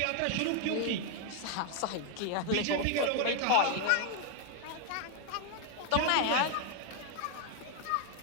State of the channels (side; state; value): both; different; correlation 0.01